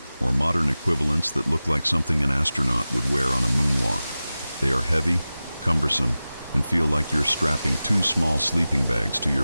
or modern equivalents that look like something an astronaut would wear on a moonwalk. They are heavy, cumbersome, and feel like you're strapping 2 small sleeping bags to your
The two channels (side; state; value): both; inverted; correlation -0.96